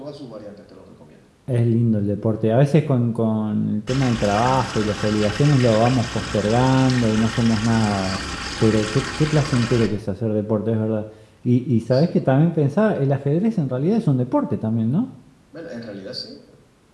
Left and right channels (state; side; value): identical; both; correlation 1.00